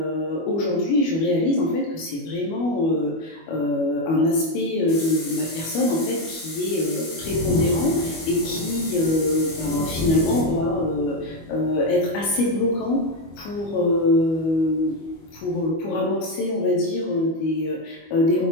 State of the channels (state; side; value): late; right; 25 ms